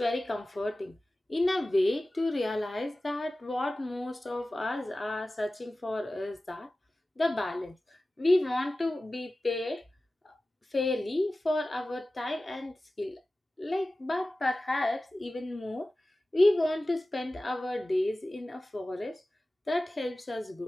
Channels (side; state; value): both; normal; correlation 0.96